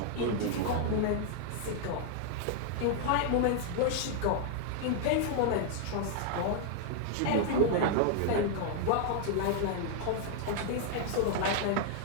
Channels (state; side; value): different; both; correlation -0.01